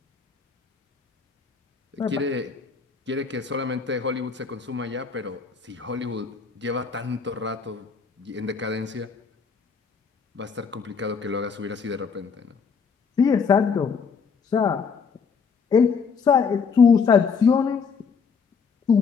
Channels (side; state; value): right; quieter; 5.7 dB